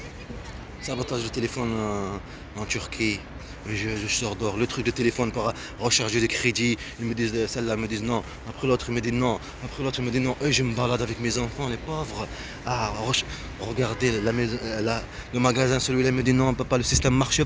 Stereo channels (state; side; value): identical; both; correlation 1.00